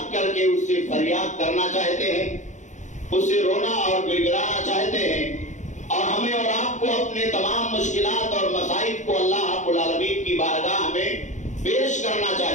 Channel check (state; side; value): late; right; 0.35 ms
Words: کر کے اس سے فریاد کرنا چاہتے ہیں، اس سے رونا اور گڑ گڑانا چاہتے ہیں، اور ہمیں اور آپ کو اپنے تمام مشکلات اور مصائب کو اللہ رب العالمین کی بارگاہ میں پیش کرنا